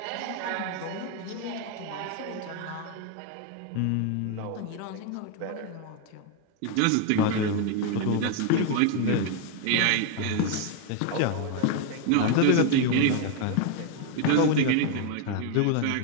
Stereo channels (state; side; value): different; both; correlation 0.01